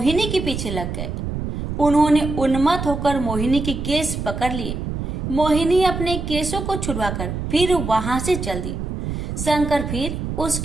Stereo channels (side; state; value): right; noise; rumble, 4 dB below the sound